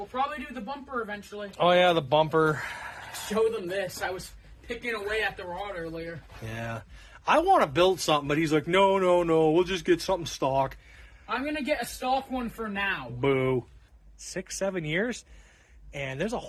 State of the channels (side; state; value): both; identical; correlation 1.00